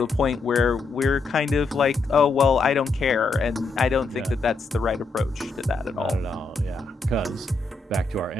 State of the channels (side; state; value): right; quieter; 3.8 dB